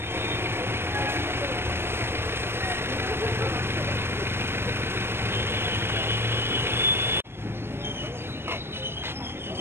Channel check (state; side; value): late; left; 0.12 ms